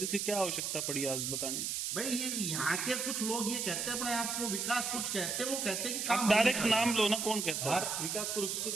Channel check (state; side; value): noise; right; hiss, 1 dB below the sound